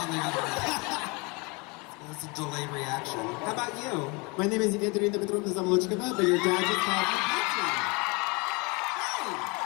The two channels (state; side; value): quieter; right; 28.5 dB